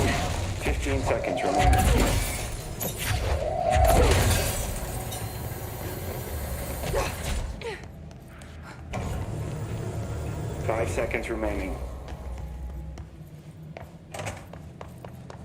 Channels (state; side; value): identical; both; correlation 1.00